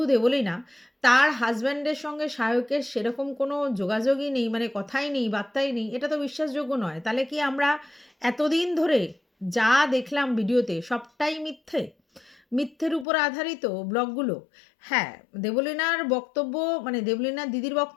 দেবলীনা, তার হাসব্যান্ডের সঙ্গে সায়কের সেরকম কোনো যোগাযোগই নেই, মানে কথাই নেই, বার্তাই নেই। এটা তো বিশ্বাসযোগ্য নয়। তাহলে কি আমরা এতদিন ধরে যা দেখলাম ভিডিওতে সবটাই মিথ্যে? মিথ্যের উপর আধারিত ব্লগগুলো। হ্যাঁ, দেবলীনার বক্তব্য, মানে দেবলীনার দিদির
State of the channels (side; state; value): right; drops out; at 13.1 s